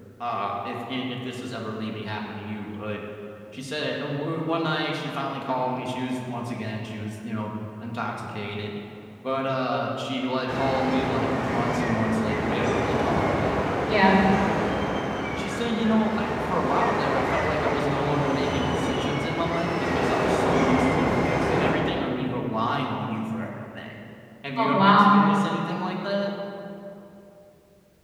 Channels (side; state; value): both; identical; correlation 1.00